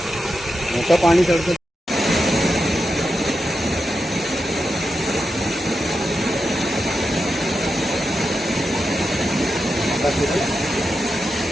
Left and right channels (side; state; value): both; normal; correlation 0.88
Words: मोठं पाणी चढतं